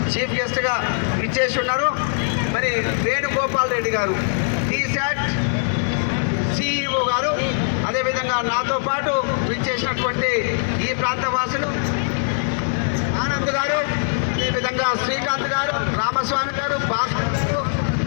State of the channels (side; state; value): right; silent; digital silence